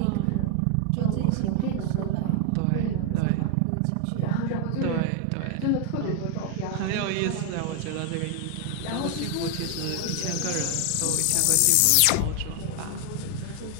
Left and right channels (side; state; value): both; different; correlation 0.00